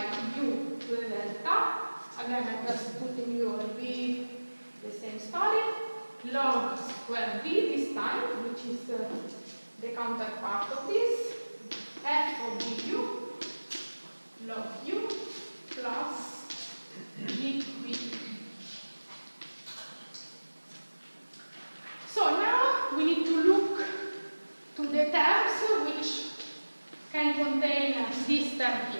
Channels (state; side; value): inverted; both; correlation -1.00